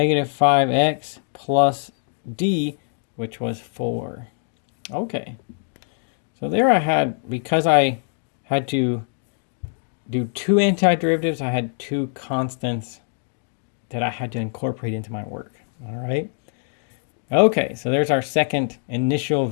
5x plus d, which was 4. Okay. So there I had, because I had to do two antiderivatives, I had two constants that I had to incorporate into my work. All right. Okay, so there's our second initial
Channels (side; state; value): right; silent; 60 dB below the other